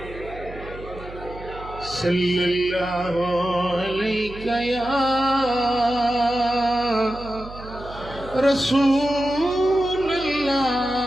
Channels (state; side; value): noise; right; hum, 15 dB below the sound